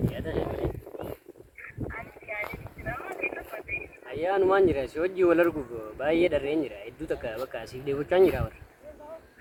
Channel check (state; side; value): identical; both; correlation 1.00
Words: Ayah nuan jira, soji walar kuku, bayar dari jira, itu tak apa kasih dia bukan jira war.